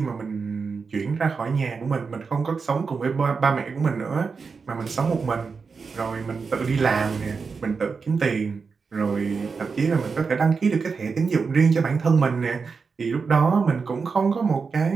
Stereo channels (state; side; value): quieter; left; 5.1 dB